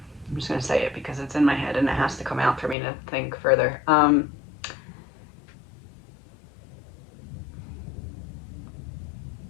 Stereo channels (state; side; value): drops out; right; at 2.8 s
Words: just going to say it because it's in my head and it has to come out for me to think further.